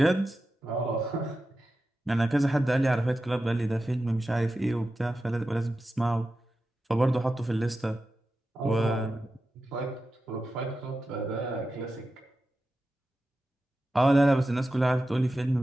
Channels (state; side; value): normal; both; correlation 0.92